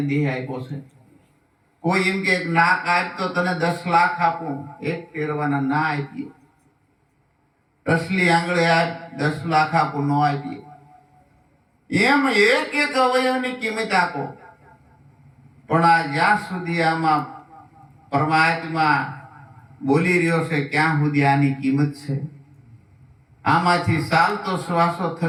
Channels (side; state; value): both; identical; correlation 1.00